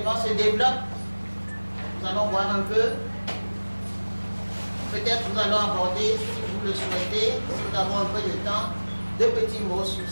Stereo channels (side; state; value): both; inverted; correlation -1.00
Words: se développe. Nous allons voir un peu. Peut-être nous allons aborder, si vous le souhaitez, si nous avons un peu de temps, deux petits mots sur